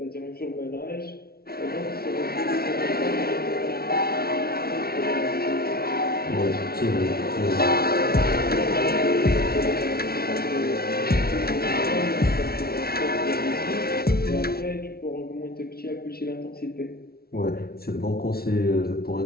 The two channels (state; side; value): late; right; 0.44 ms